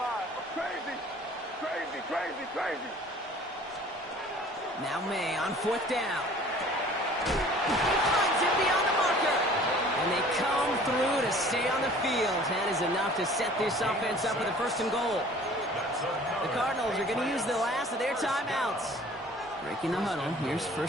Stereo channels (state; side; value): normal; both; correlation 0.50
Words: Crazy. Now May on 4th down. Finds him beyond the marker. And they come through to stay on the field. That is enough to set this offense up with a 1st and goal. The Cardinals are going to use the last of their timeouts. Breaking the huddle. Here's